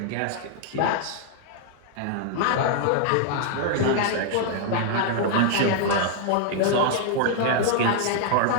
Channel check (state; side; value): different; both; correlation 0.00